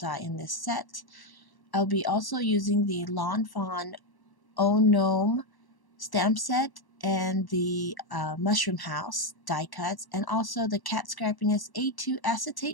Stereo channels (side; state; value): right; late; 1.1 ms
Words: in this set. I'll be also using the Fawn Gnome stamp set and the Mushroom House die cuts, and also the Cat Scrappiness A2